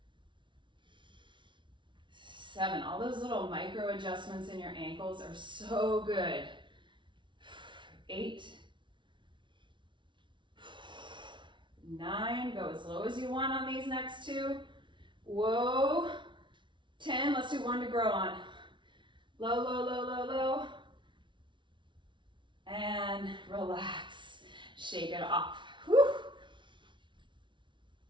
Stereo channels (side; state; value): left; late; 0.24 ms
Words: 7. All those little micro adjustments in your ankles are so good. 8. 9, go as low as you want on these next 2. Whoa. 10, let's do 1 to grow on. Low, low, low, low, low. And relax. Shake it off. Whew.